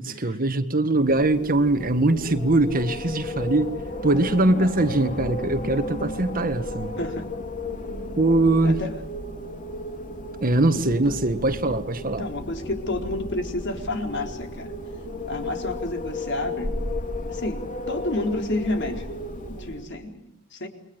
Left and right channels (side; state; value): both; normal; correlation 0.50